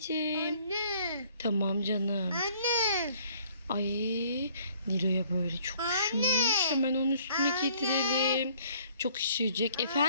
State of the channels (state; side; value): inverted; both; correlation -0.59